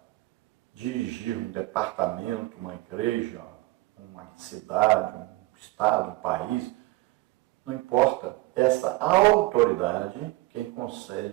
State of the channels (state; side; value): quieter; left; 20.9 dB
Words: dirigir um departamento, uma igreja, uma cidade, um estado, um país, não importa, essa autoridade quem